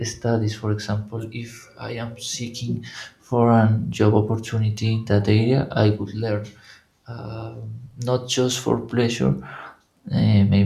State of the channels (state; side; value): identical; both; correlation 1.00